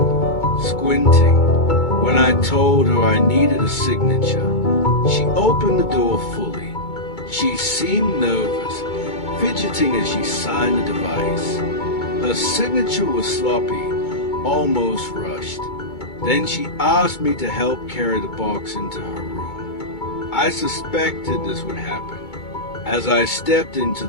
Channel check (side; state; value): right; late; 2.2 ms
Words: squinting. When I told her I needed a signature, she opened the door fully. She seemed nervous, fidgeting as she signed the device. Her signature was sloppy, almost rushed. Then she asked me to help carry the box into her room. I suspected this would happen. As I stepped into